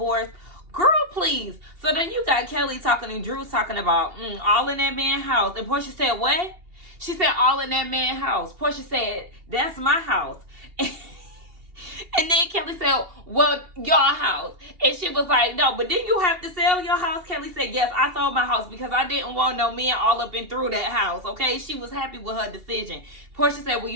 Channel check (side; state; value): left; late; 2.8 ms